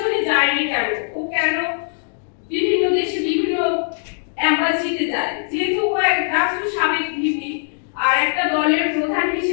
যায়নি কেন, ও কেন বিভিন্ন দেশে বিভিন্ন এম্বাসিতে যায়, যেহেতু ও এক রাষ্ট্র সাবেক ভিপি আর একটা দলের প্রধান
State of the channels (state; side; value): silent; right; digital silence